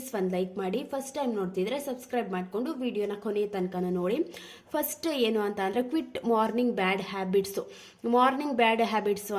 ಒಂದು ಲೈಕ್ ಮಾಡಿ. ಫಸ್ಟ್ ಟೈಮ್ ನೋಡ್ತಿದ್ರೆ ಸಬ್ಸ್ಕ್ರೈಬ್ ಮಾಡಿಕೊಂಡು ವಿಡಿಯೋನ ಕೊನೆ ತನಕ ನೋಡಿ. ಫಸ್ಟ್ ಏನು ಅಂತ ಅಂದರೆ ಕ್ವಿಟ್ ಮಾರ್ನಿಂಗ್ ಬ್ಯಾಡ್ ಹ್ಯಾಬಿಟ್ಸು. ಮಾರ್ನಿಂಗ್ ಬ್ಯಾಡ್ ಹ್ಯಾಬಿಟ್ಸು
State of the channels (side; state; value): both; identical; correlation 1.00